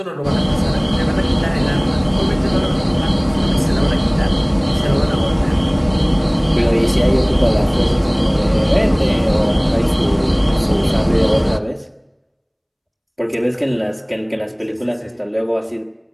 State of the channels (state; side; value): identical; both; correlation 1.00